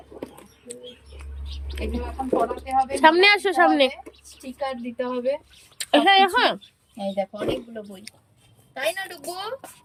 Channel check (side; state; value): both; identical; correlation 1.00